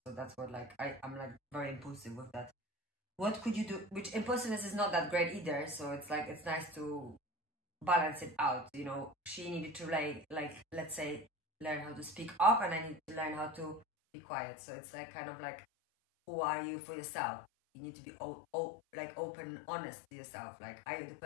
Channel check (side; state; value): right; drops out; at 13.9 s